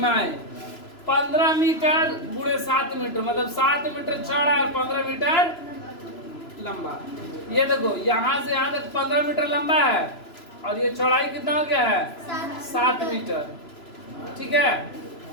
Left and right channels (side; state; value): right; late; 3.0 ms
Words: 15 मीटर गुणे 7 मीटर, मतलब 7 मीटर चौड़ा और 15 मीटर लंबा। ये देखो यहाँ से यहाँ तक 15 मीटर लंबा है और ये चौड़ाई कितना हो गया है, 7 मीटर। ठीक है,